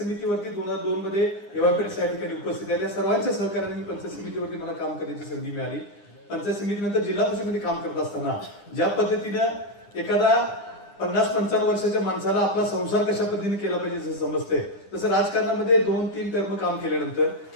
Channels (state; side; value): late; right; 9.9 ms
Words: 2002 मध्ये एवापेठ या ठिकाणी उपस्थित आहे. त्या सर्वांच्या सहकार्याने मी पंचायत समितीवरती मला काम करण्याची संधी मिळाली. पंचायत समितीनंतर जिल्हा परिषदेमध्ये काम करत असताना ज्या पद्धतीनं एखादा 50-55 वर्षाच्या माणसाला आपला संसार कशा पद्धतीने केला पाहिजे जसं समजते तसं राजकारणामध्ये 2-3 टर्म काम केल्यानंतर